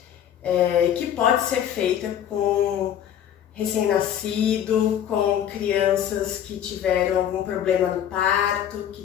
que pode ser feita com recém-nascido, com crianças que tiveram algum problema no parto, que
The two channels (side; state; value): right; quieter; 10.0 dB